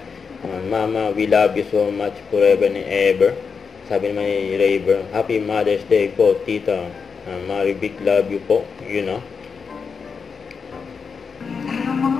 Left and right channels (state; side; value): quieter; right; 5.6 dB